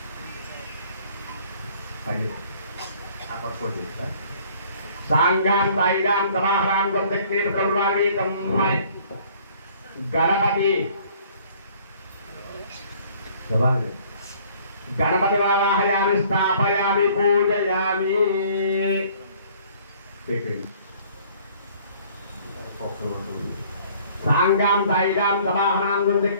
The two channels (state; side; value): inverted; both; correlation -0.56